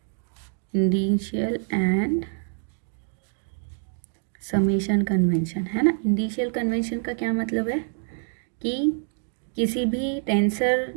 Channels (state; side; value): silent; left; 61 dB below the other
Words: Indicial and summation convention, है ना। इंडिशियल कन्वेंशन का क्या मतलब है कि किसी भी टेंसर